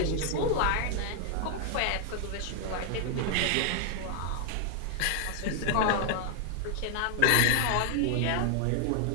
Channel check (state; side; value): different; both; correlation 0.00